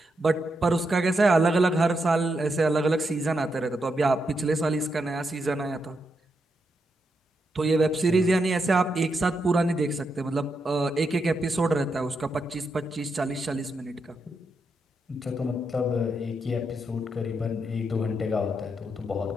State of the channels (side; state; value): both; normal; correlation 0.83